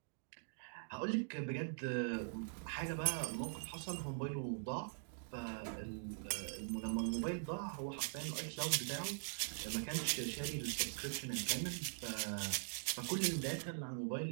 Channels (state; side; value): silent; left; digital silence